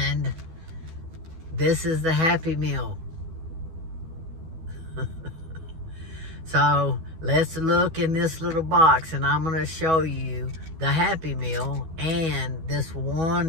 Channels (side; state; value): left; late; 12 ms